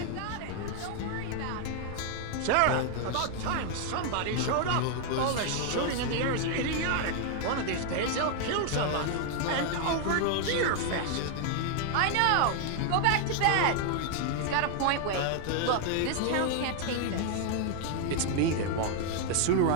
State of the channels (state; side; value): different; both; correlation 0.00